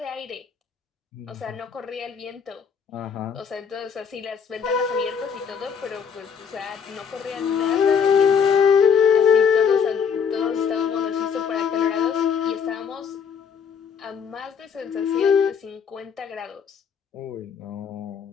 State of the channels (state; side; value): quieter; right; 6.8 dB